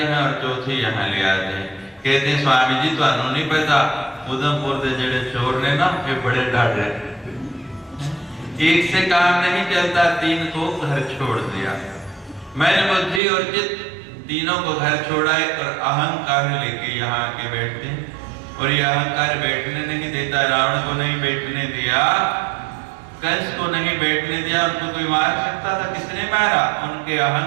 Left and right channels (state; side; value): drops out; left; at 13.2 s